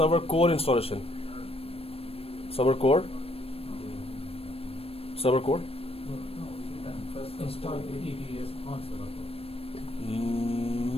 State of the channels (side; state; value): right; late; 0.28 ms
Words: core installation. Server core. Server core. Install ADDS on server